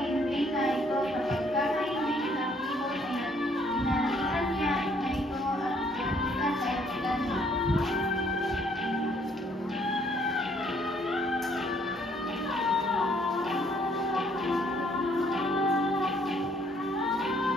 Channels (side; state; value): both; normal; correlation 0.65